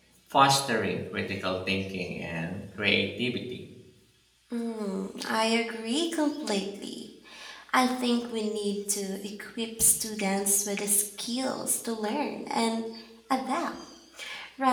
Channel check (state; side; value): identical; both; correlation 1.00